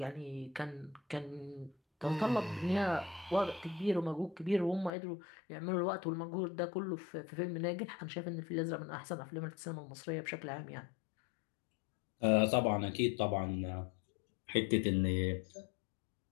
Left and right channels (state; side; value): drops out; right; at 4.9 s